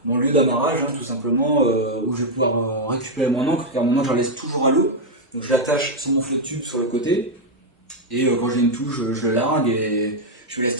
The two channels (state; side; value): normal; both; correlation 0.00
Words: lieu d'amarrage, hein, tout simplement, où je vais pouvoir récupérer mon ancre, car mon ancre, je la laisse toujours à l'eau. Donc je l'attache sur mon flotte tube sur le côté, et quand j'ai une touche, je le largue et je me laisse